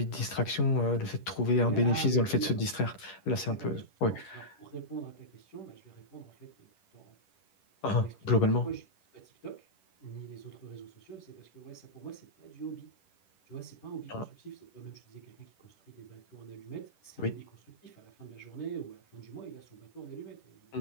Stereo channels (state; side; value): late; right; 10 ms